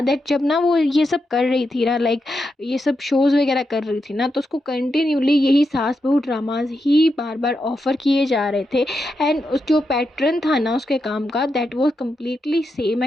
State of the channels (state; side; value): normal; both; correlation 0.85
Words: दैट जब ना वो ये सब कर रही थी ना, लाइक ये सब शोज़ वगैरह कर रही थी ना, तो उसको कंटिन्यूली यही सास बहू ड्रामाज ही बार बार ऑफ़र किए जा रहे थे। एंड उस जो पैटर्न था ना उसके काम का, that was completely same